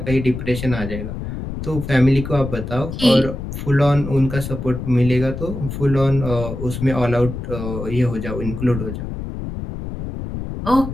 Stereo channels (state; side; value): noise; left; rumble, 7 dB below the sound